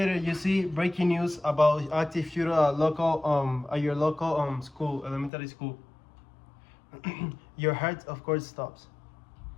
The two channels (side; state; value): right; drops out; at 5.3 s